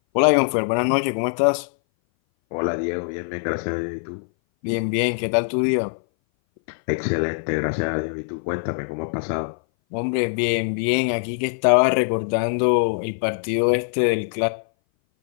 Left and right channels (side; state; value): right; silent; 59 dB below the other